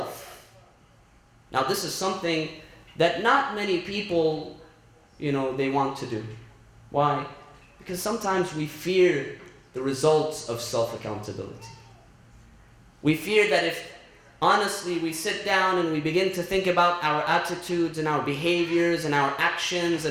Now, this is something that not many people, they want to do. Why? Because sometimes we fear the results of self-accountability. We fear that if, honestly, we sit down and we begin to think about our attitudes and our behaviors and our actions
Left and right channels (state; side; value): identical; both; correlation 1.00